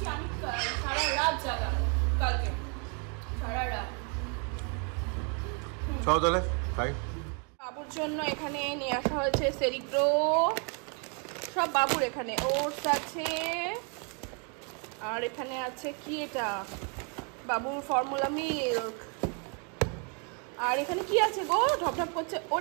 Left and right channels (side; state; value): left; quieter; 37.7 dB